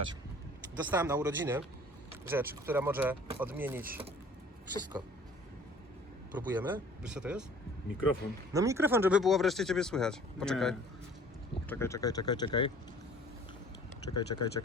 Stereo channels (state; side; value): normal; both; correlation 0.50